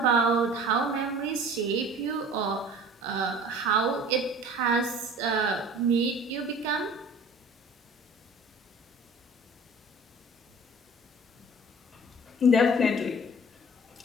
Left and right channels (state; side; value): normal; both; correlation 0.45